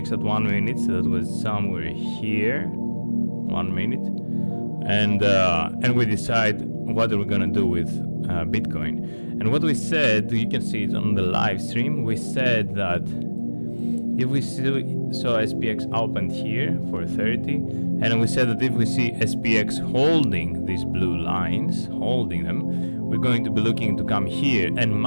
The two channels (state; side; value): inverted; both; correlation -1.00